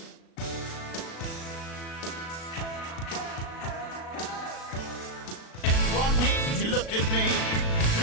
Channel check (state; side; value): late; right; 36 ms